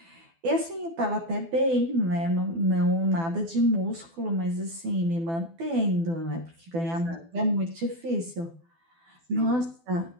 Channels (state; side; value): late; left; 12 ms